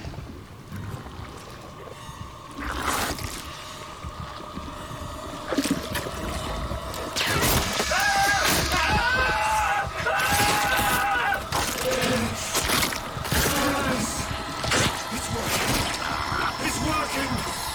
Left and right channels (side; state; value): both; identical; correlation 1.00